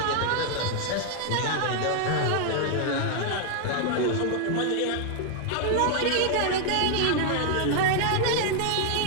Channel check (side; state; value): both; different; correlation 0.00